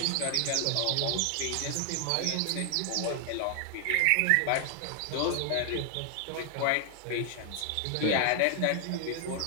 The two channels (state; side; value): different; both; correlation 0.00